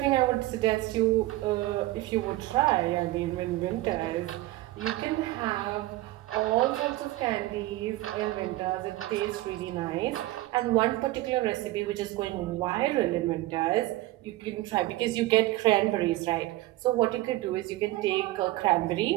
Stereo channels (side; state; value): left; quieter; 17.5 dB